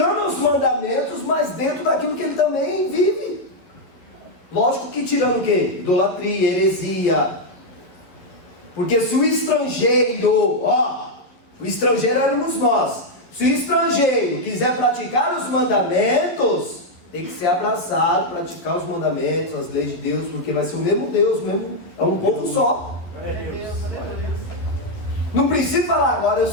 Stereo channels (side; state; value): right; late; 11 ms